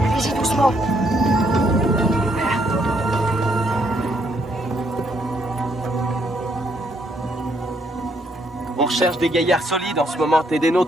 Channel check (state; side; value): normal; both; correlation 0.72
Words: Allez-y doucement. On recherche des gaillards solides en ce moment. T'es des